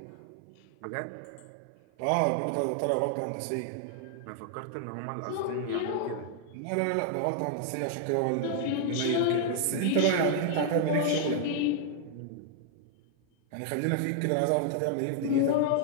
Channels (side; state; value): both; different; correlation 0.00